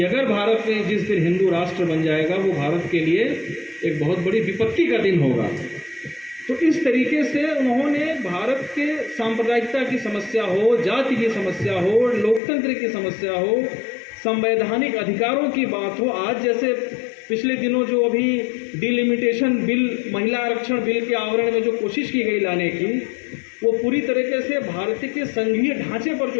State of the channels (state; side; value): drops out; right; at 12.4 s